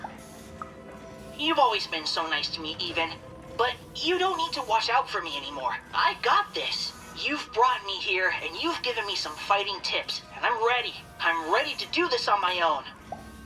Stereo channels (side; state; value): both; identical; correlation 1.00